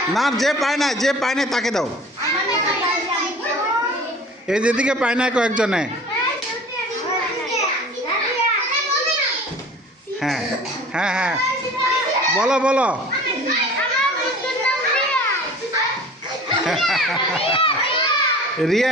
না, যে পায় না, যে পায় না তাকে দাও। এই যেদিকে পায় না কয়েকজনে। হ্যাঁ হ্যাঁ হ্যাঁ, বলো বলো। রিয়া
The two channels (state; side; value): normal; both; correlation 0.43